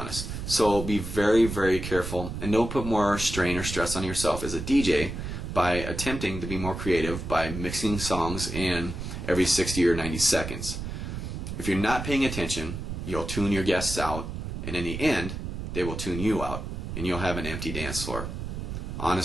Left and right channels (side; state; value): right; noise; rumble, 6 dB below the sound